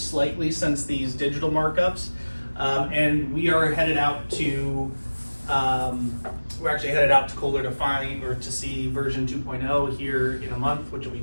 since these digital markups. And we are headed out to, Kohler to see version 2.0 here in a month, which will be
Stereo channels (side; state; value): both; inverted; correlation -1.00